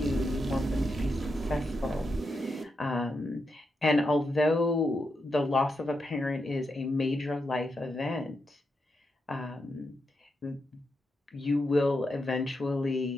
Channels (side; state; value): both; normal; correlation 0.85